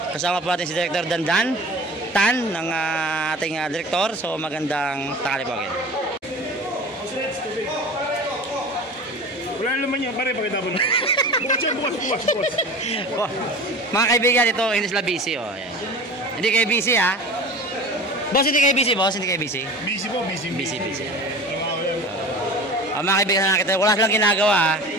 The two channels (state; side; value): normal; both; correlation 0.37